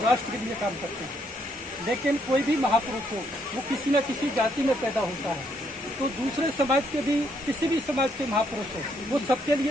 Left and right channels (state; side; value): normal; both; correlation 0.73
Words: राष्ट्र के लिए काम करते हैं। लेकिन कोई भी महापुरुष हो वो किसी न किसी जाति में पैदा होता है, तो दूसरे समाज के भी किसी भी समाज के महापुरुष हो वो सबके